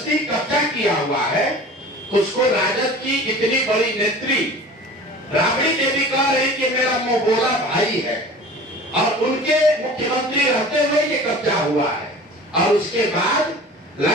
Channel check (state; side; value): normal; both; correlation 0.41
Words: कब्जा किया हुआ है। उसको राजद की इतनी बड़ी नेत्री राबड़ी देवी कह रही कि मेरा मुंह बोला भाई है, और उनके मुख्यमंत्री रहते हुए ये कब्जा हुआ है, और उसके बाद